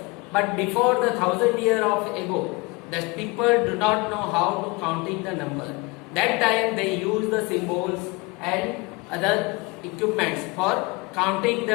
but before the 1000 years of ago, the people do not know how to counting the number. That time they use the symbols and other equipments for counting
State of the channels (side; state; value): right; quieter; 25.7 dB